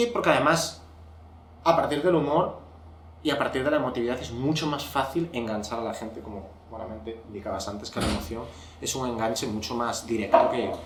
porque además, a partir del humor y a partir de la emotividad es mucho más fácil enganchar a la gente, como buenamente indicabas antes, que la emoción es un enganche mucho más directo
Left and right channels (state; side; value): identical; both; correlation 1.00